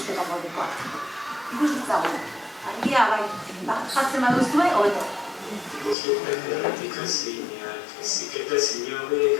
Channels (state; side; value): drops out; right; at 6.0 s